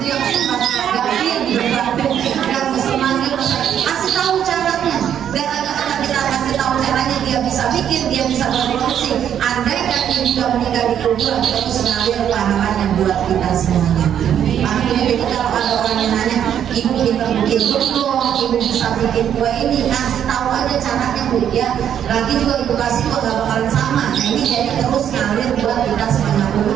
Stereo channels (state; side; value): quieter; left; 9.4 dB